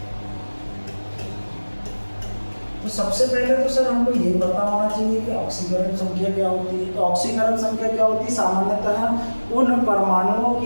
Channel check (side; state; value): both; inverted; correlation -1.00